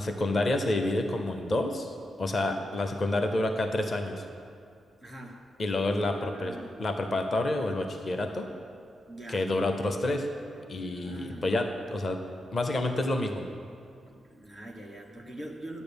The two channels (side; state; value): both; normal; correlation 0.86